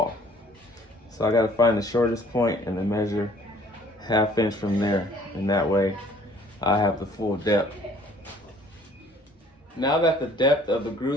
So I gotta find the shortest point and then measure 1/2 inch from there. And that way I have the full depth. Now that the depth of the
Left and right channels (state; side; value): normal; both; correlation 0.56